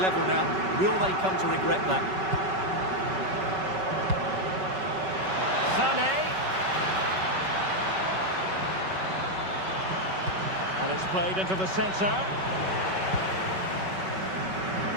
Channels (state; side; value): late; left; 5.3 ms